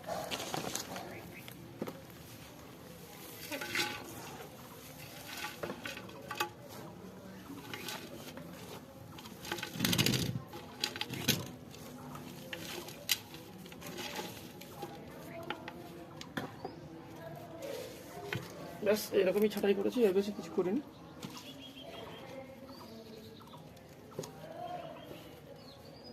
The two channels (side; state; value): both; identical; correlation 1.00